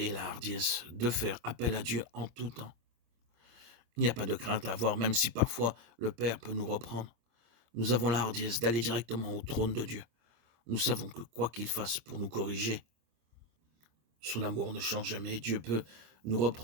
et la hardiesse de faire appel à Dieu en tout temps. Il n'y a pas de crainte à avoir, même si parfois le Père peut nous reprendre. Nous avons la hardiesse d'aller directement au trône de Dieu. Nous savons que quoi qu'il fasse pour nous corriger, son amour ne change jamais. Dieu peut nous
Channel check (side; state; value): left; late; 26 ms